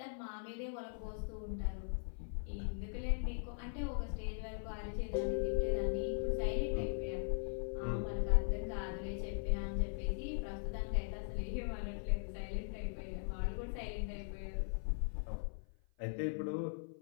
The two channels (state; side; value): silent; right; 51 dB below the other